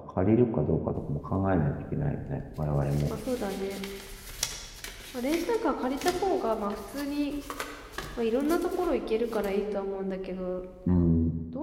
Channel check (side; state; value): both; identical; correlation 1.00